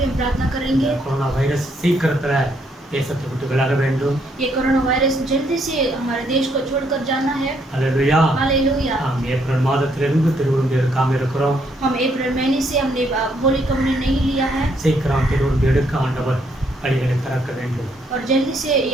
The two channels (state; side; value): normal; both; correlation 0.72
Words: हम प्रार्थना करेंगे। கொரோனா வைரஸ் சீக்கிரத்துல தேசத்தை விட்டு விலக வேண்டும். ये कोरोना वायरस जल्दी से हमारे देश को छोड़कर जाना है। அல்லேலூயா. हालेलुया। நாம் ஏப்ரல் மாதத்திலிருந்து திருவிருந்து எடுக்காம இருக்கிறோம். हम अप्रैल महीने से हमने होली कम्युनियन नहीं लिया है சீக்கிரம் திருவிருந்து எடுக்க ஆண்டவர் வழிகளை திறக்க வேண்டும். और जल्दी से